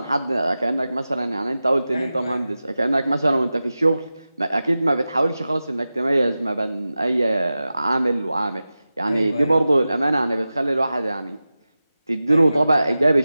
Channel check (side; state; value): both; inverted; correlation -0.94